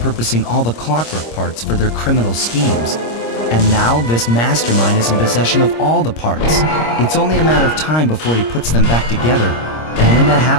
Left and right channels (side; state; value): right; late; 26 ms